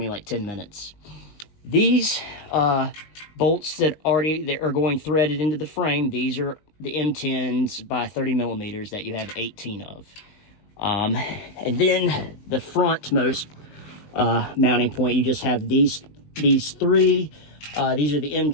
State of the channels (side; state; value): right; late; 19 ms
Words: like 10 minutes. These bolts that are going threaded into the frame, these are the M10s by 30 millimeters that you have 18 of. And then the frontmost mounting point, you just have these 3. These are the